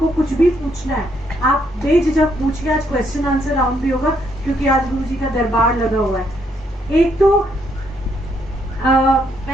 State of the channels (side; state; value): both; normal; correlation 0.73